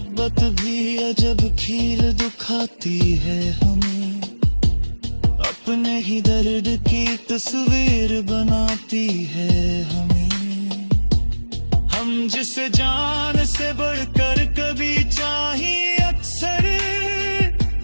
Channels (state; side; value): inverted; both; correlation -1.00